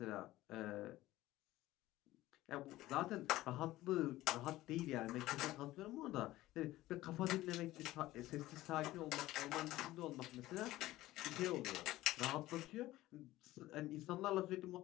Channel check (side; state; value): right; quieter; 16.6 dB